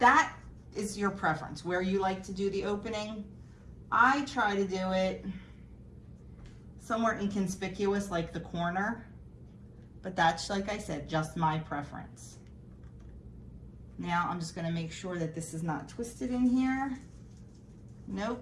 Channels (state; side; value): identical; both; correlation 1.00